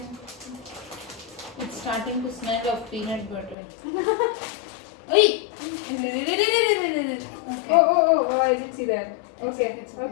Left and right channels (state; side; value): drops out; right; at 3.6 s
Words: It's starting to smell of peanut butter. Hey! Okay. Oh, I didn't see that. Okay.